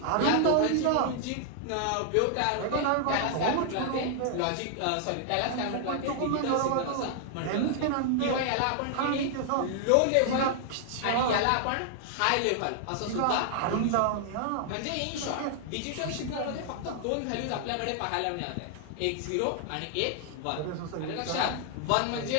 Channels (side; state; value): both; different; correlation -0.01